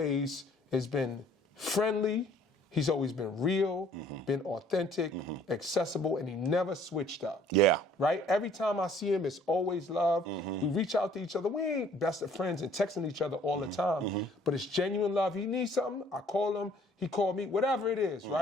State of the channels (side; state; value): both; normal; correlation 0.58